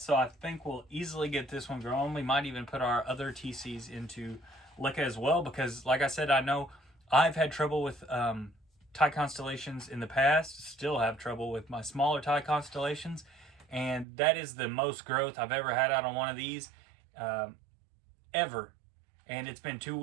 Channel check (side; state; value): left; drops out; at 14.1 s